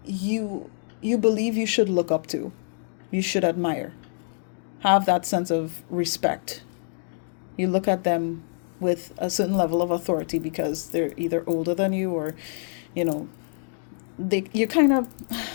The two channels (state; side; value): silent; right; digital silence